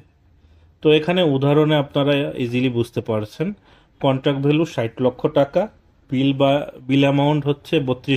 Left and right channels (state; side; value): identical; both; correlation 1.00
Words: তো এখানে উদাহরণে আপনারা ইজিলি বুঝতে পারছেন। কন্ট্রাক্ট ভ্যালু 60 লক্ষ টাকা, বিল অ্যামাউন্ট হচ্ছে